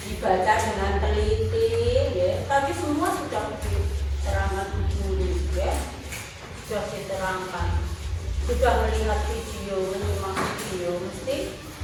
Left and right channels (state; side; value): identical; both; correlation 1.00